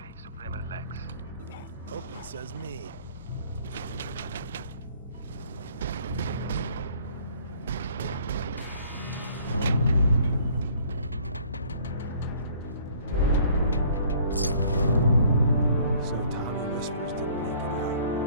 Suprema Lex. Hope it says me. So Tommy Whispers didn't make it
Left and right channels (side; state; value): both; inverted; correlation -0.56